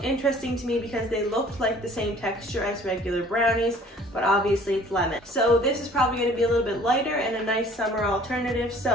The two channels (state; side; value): normal; both; correlation 0.52